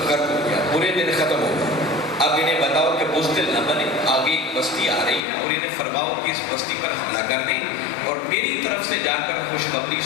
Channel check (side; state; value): right; drops out; at 5.2 s